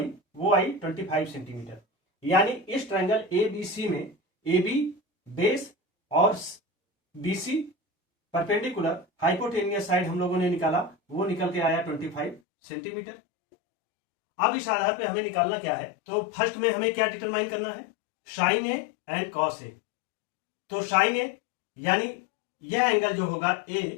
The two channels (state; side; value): drops out; right; at 12.4 s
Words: वो आई 25 सेंटीमीटर। यानी इस ट्रायंगल ए बी सी में ए बी बेस और B C perpendicular hypotenuse side हम लोगों ने निकाला, वो निकल के आया 25 सेंटीमीटर। अब इस आधार पे हमें निकालना क्या है, तो फर्स्ट में हमें क्या डिटरमाइन करना है, साइन ए एंड कॉस ए। तो साइन ए यानी यह एंगल जो होगा